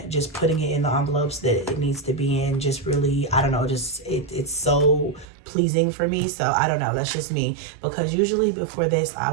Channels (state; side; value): drops out; left; at 5.2 s